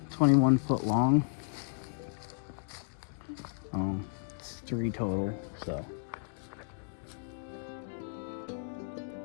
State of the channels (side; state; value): right; silent; digital silence